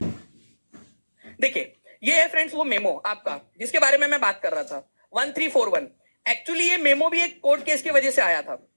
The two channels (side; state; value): both; inverted; correlation -1.00